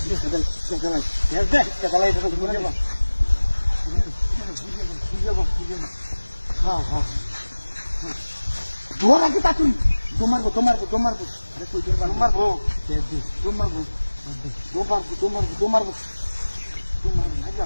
ধোয়ার আগে তা তুই তোমারবো আরে কই তোমারবো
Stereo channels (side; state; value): both; inverted; correlation -1.00